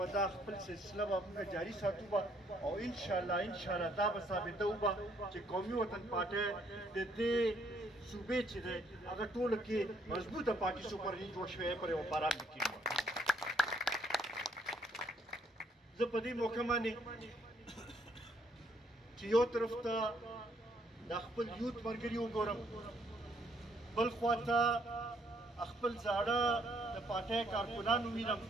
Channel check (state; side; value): normal; both; correlation 0.69